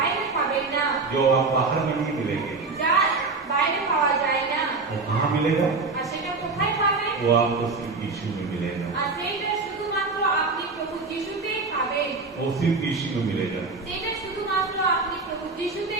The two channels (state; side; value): quieter; left; 4.0 dB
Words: পাবেন না, जो आप बाहर में नहीं मिलेंगे, যা বাইরে পাওয়া যায় না। वो कहाँ मिलेगा? আর সেটা কোথায় পাবেন? वो आपको सिर्फ यीशु में मिलेगा, আর সেইটা শুধুমাত্র আপনি প্রভু যিশুতেই পাবেন, वो सिर्फ यीशु में मिलेगा। সেটা শুধুমাত্র আপনি প্রভু